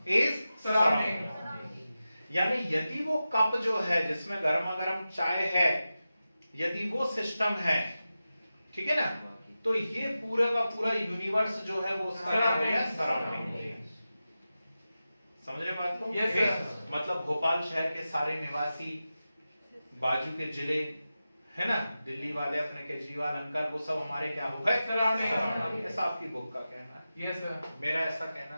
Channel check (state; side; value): inverted; both; correlation -0.93